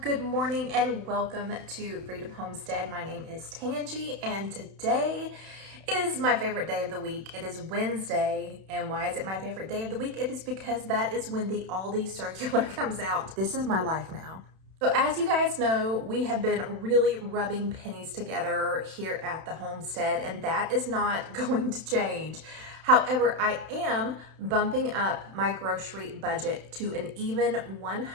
good morning and welcome to Freedom Homestead. My name is Tangie and today is my favorite day of the week. It is Wednesday, and why is it my favorite day of the week? It is because that is when the Aldi circular comes out. This is my life now. So as you guys know, we have been really rubbing pennies together here at the homestead, and that is not going to change. However, I am bumping up my grocery budget to an even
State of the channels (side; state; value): left; late; 31 ms